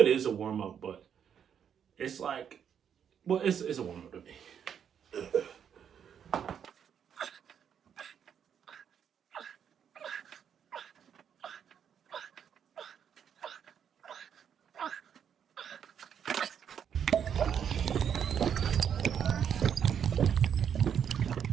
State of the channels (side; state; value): left; quieter; 8.2 dB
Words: is a warm up, but it's like, well, it's a warm up to me.